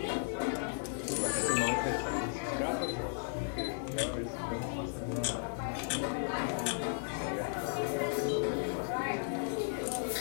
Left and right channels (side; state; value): right; silent; 54 dB below the other